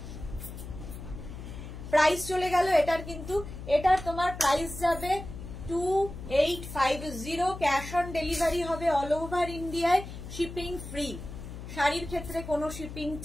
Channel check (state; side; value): noise; left; hum, 11 dB below the sound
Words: প্রাইস চলে গেল এটার কিন্তু, এটার তোমার প্রাইস যাবে 2850। ক্যাশ অন ডেলিভারি হবে অল ওভার ইন্ডিয়ায়, শিপিং ফ্রি। শাড়ির ক্ষেত্রে কোনো শিপিং